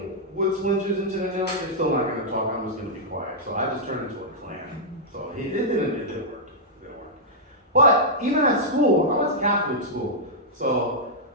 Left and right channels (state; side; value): normal; both; correlation -0.08